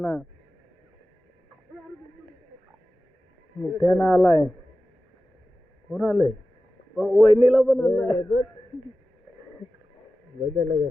मुठ्यानं आलाय. कोण आलंय? वहिनीला पण आलाय. बघायला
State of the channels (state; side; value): normal; both; correlation 0.95